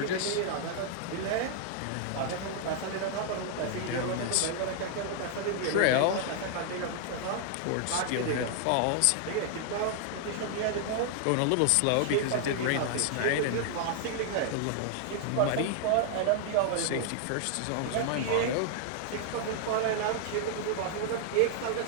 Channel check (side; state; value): both; different; correlation 0.00